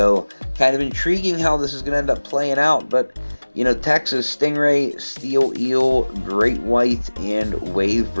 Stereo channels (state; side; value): inverted; both; correlation -1.00